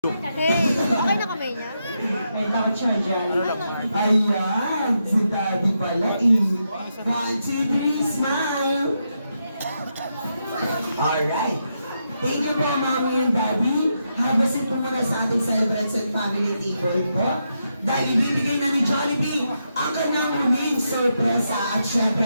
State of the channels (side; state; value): both; inverted; correlation -0.83